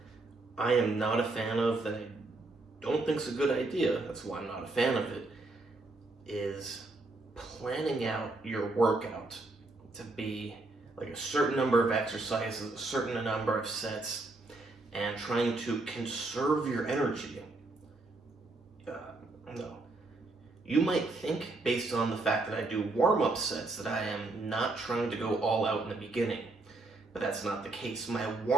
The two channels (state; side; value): quieter; left; 3.1 dB